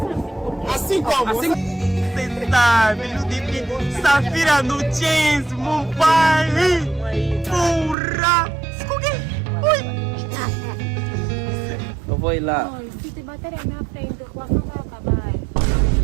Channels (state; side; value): drops out; left; at 8.0 s